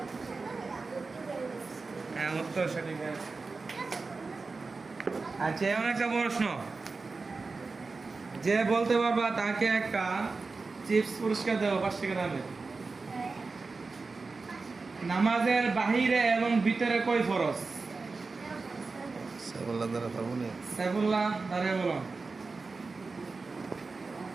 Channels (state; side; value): quieter; left; 4.1 dB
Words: হ্যাঁ, উত্তর সঠিক হয়েছে। আচ্ছা, এমন একটা প্রশ্ন, যে বলতে পারবা তাকে একটা চিপস পুরস্কার দেবো 5 টাকা দামের। নামাজের বাহিরে এবং ভিতরে কয় ফরজ? সাইফুল্লাহ দ্বারা পারবো না। সাইফুল্লাহ দাঁড়িয়ে বলো।